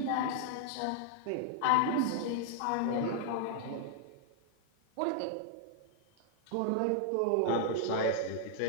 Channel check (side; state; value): both; different; correlation -0.01